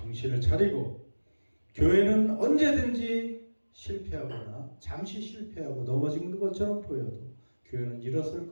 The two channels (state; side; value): inverted; both; correlation -1.00